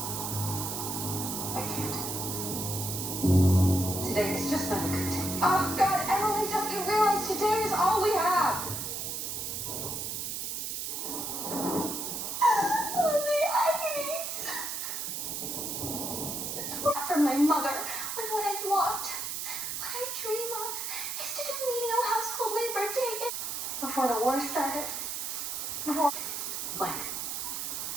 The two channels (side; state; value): right; noise; hiss, 3 dB below the sound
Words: I can't. Today is just not a good day. Oh, God, Emily, don't you realize today is all we have? Oh, the agony. From my mother, when what I want, what I dream of, is to do menial household labor day in... Before the war started. Before... Blank.